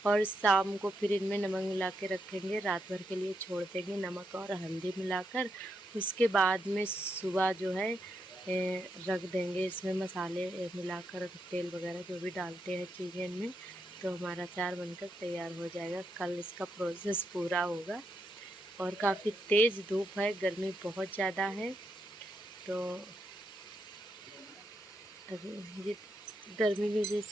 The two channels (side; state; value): both; normal; correlation 0.81